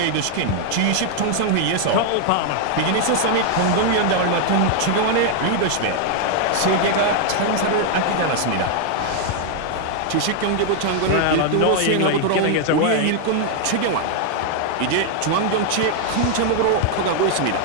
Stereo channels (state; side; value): different; both; correlation 0.00